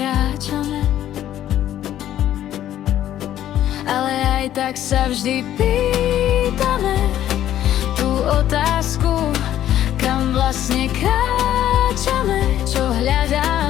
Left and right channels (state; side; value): quieter; right; 11.9 dB